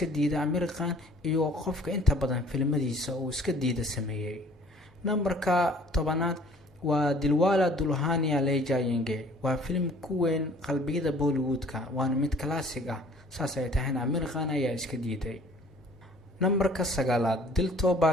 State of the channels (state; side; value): normal; both; correlation 0.53